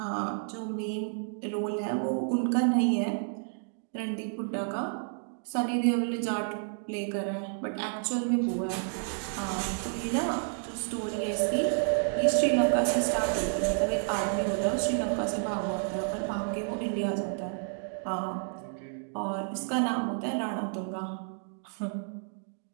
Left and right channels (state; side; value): silent; left; digital silence